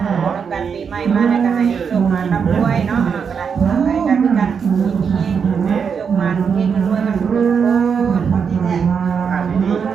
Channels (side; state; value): left; quieter; 6.5 dB